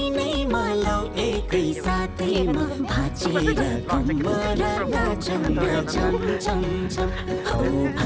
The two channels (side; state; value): both; identical; correlation 1.00